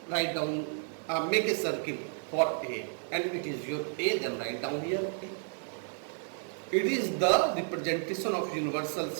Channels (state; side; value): silent; left; 57 dB below the other